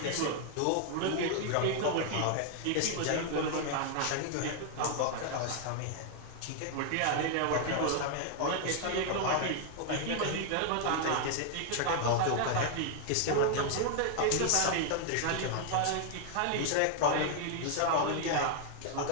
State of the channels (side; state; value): both; different; correlation 0.00